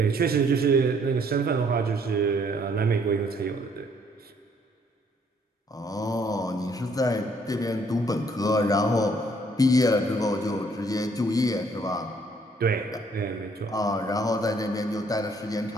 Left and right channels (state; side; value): normal; both; correlation 0.65